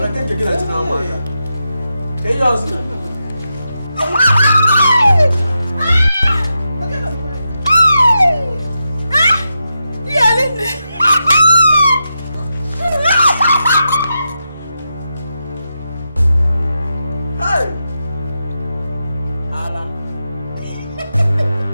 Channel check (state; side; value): inverted; both; correlation -0.87